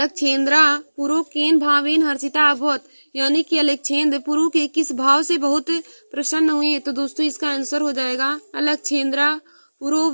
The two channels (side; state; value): both; inverted; correlation -1.00